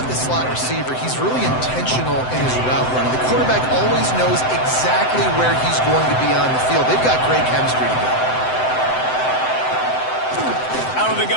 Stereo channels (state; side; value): late; right; 7.8 ms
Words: this slot receiver, he's really intentional in his route running. The quarterback always knows exactly where he's going to be on the field. They've got great chemistry together. Out of the